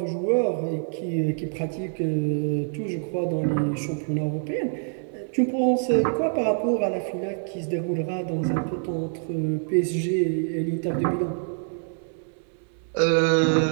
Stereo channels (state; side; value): silent; left; 61 dB below the other